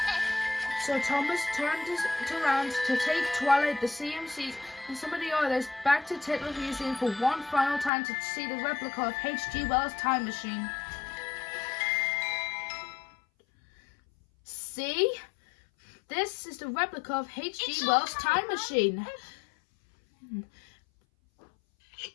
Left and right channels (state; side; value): drops out; right; at 7.9 s